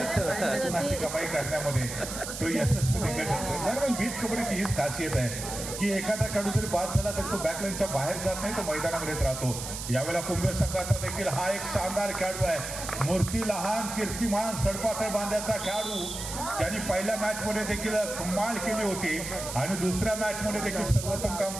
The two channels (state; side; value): noise; right; hiss, 7 dB below the sound